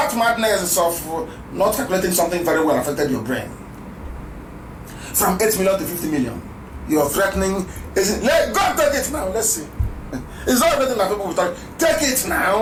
madness of not calculating something very well affected your brain. From 8 million to 50 million. You're threatening. Go and take it now. Let's see. It's not everything that people will talk. Take it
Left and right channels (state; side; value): identical; both; correlation 1.00